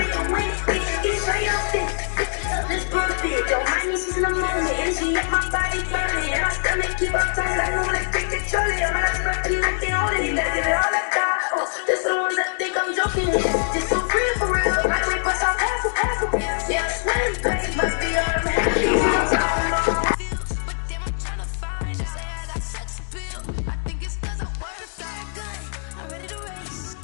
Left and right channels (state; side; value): silent; right; digital silence